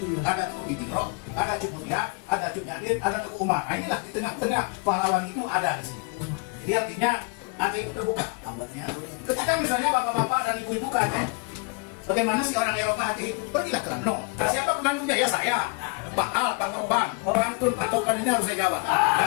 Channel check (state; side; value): quieter; right; 32.9 dB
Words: Ada Tuku Ditiro, ada Cuk Mulia, ada Cuk Nyadir, ada Tuku Umar. Nah inilah di tengah-tengah pahlawan itu ada di sini. Jadi artinya Aceh itu terbuka. Ketika misalnya bapak-bapak dan ibu-ibu ke Aceh, bagaimana sih orang Eropa Aceh itu? Pergilah ke Lamno. Nah, siapa penantunya? Ya saya. Pak Al, Pak Topan, Rantun, Pak Topan ini harus saya jawab.